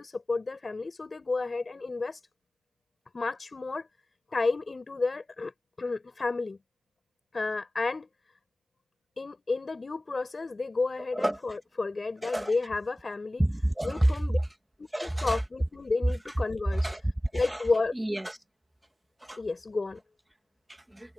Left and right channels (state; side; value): normal; both; correlation 0.97